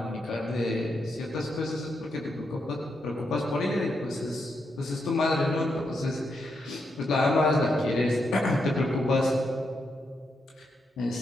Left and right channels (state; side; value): normal; both; correlation 0.82